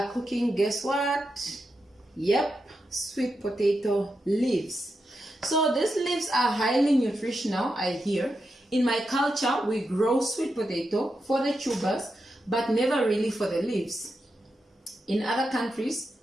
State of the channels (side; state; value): both; normal; correlation 0.87